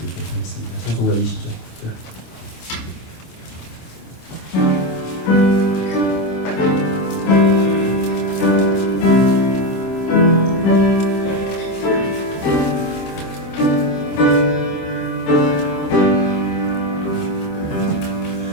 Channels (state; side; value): late; right; 26 ms